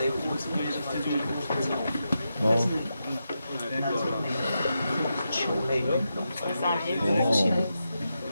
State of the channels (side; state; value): both; inverted; correlation -0.87